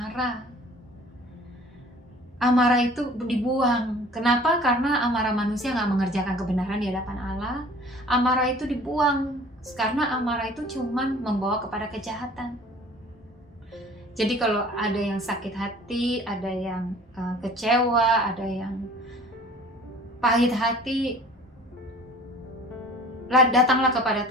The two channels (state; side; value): normal; both; correlation 0.48